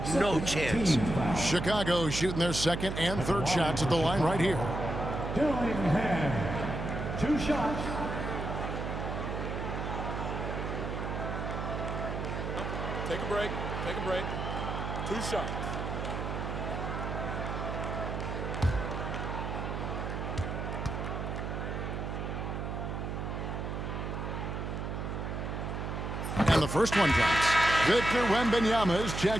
no chance. Chicago shooting their second and third shots at the line right here. Dillingham, 2 shots. Take a break. Take a break. 2 shots. And the first one drops. Victor Wembanyama is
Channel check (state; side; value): noise; right; hum, 4 dB below the sound